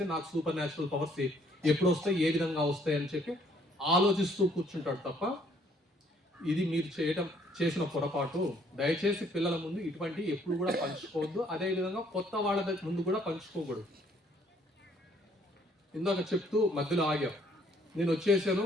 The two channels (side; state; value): both; normal; correlation 0.64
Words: నాకు సూపర్ న్యాచురల్ పవర్స్ ఎప్పుడు వస్తాయి, ఏ విధంగా వస్తాయి అని చెప్పి ఆలోచిస్తూ కూర్చుంటాడు తప్ప, ఇది మీరు చేసిన పొరపాటు. దయచేసి పిల్లల ముందు ఇటువంటి ఎప్పుడు కూడా పంచుకోవద్దు. అదే విధంగా కొత్త వాళ్ళ ముందు కూడా పంచుకోకూడదు. ఇందాక చెప్తూ మధ్యలో ఆగాం, నేను వచ్చేసాను,